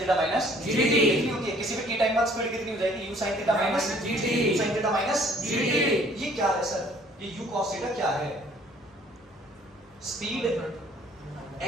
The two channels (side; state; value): both; normal; correlation 0.58